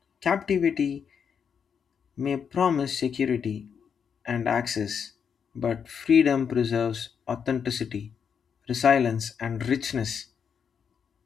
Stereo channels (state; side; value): quieter; right; 7.0 dB